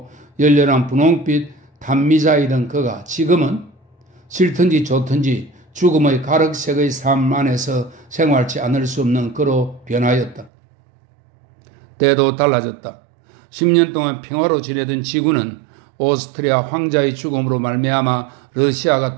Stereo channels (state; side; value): drops out; left; at 10.5 s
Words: 열렬한 분홍빛 단미자이던 그가 지금은 싫든지 좋든지 죽음의 가륵색의 삶 안에서 생활치 않을 수 없는 그로 변하였다. 때도 달라졌다. 10년 동안 평화로 지내던 지구는 오스트리아 황자의 죽음으로 말미암아 러시아가